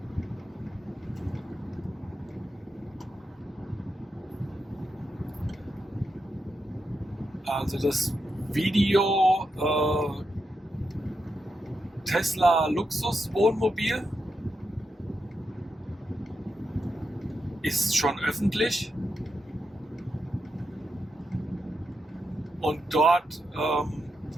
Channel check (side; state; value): both; normal; correlation 0.85